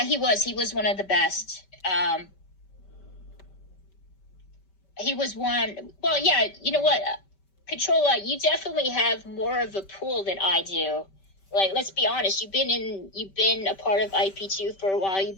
he was one of the best. He was one. Well, yeah, you know what, Controlla, you definitely have more of a pool than I do. Like, let's be honest, you've been a part of IP2 for a while. You've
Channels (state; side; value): late; right; 5.2 ms